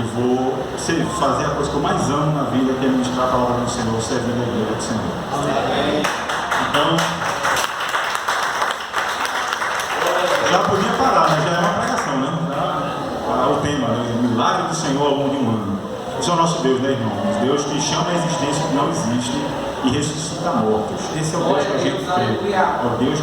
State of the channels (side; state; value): both; identical; correlation 1.00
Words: vou fazer a coisa que eu mais amo na vida, que é ministrar a palavra do Senhor, servindo a igreja do Senhor. Então, já podia parar, mas já é uma pregação, né? O tema, né? O milagre do Senhor ao longo de um ano. Esse é o nosso Deus, né, irmãos? Deus que chama a existência que não existe e ressuscita mortos. Esse é o Deus que a gente crê. É o Deus